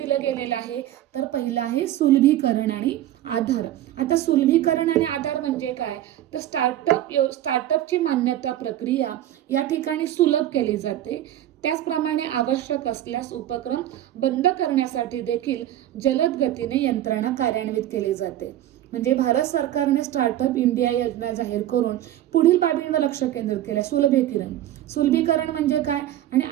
गेलेलं आहे, तर पहिलं आहे सुलभीकरण आणि आधार. आता सुलभीकरण आणि आधार म्हणजे काय, तर स्टार्टअपची मान्यता प्रक्रिया या ठिकाणी सुलभ केली जाते. त्याचप्रमाणे आवश्यक असल्यास उपक्रम बंद करण्यासाठी देखील जलद गतीने यंत्रणा कार्यान्वित केली जाते. म्हणजे भारत सरकारने स्टार्टअप इंडिया योजना जाहीर करून पुढील बाबींवर लक्ष केंद्रित केलं. सुलभीकरण म्हणजे काय आणि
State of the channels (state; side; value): quieter; left; 12.9 dB